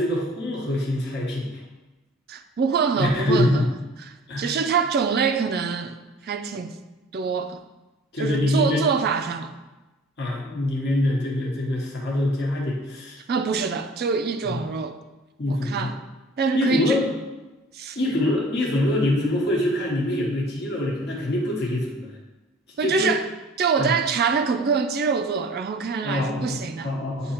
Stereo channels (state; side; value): normal; both; correlation 0.48